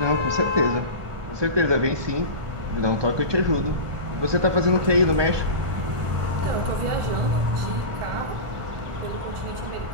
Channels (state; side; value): late; left; 1.4 ms